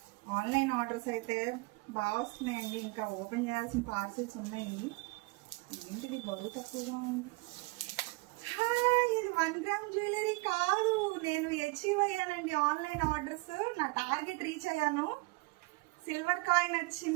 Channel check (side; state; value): left; quieter; 25.9 dB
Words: ఆన్లైన్ ఆర్డర్స్ అయితే బాగా వస్తున్నాయండి. ఇంకా ఓపెన్ చేయాల్సిన పార్సిల్స్ ఉన్నాయి. ఏంటిది బరువు తక్కువగా ఉంది. ఇది 1 గ్రామ్ జ్యువెలరీ కాదు, నేను అచీవ్ అయ్యానండి ఆన్లైన్ ఆర్డర్స్. నా టార్గెట్ రీచ్ అయ్యాను. సిల్వర్ కాయిన్